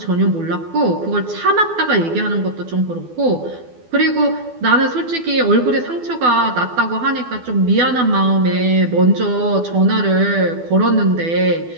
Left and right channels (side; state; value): left; late; 12 ms